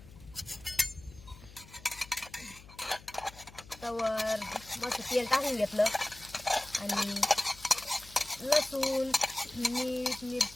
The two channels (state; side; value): noise; left; hum, 20 dB below the sound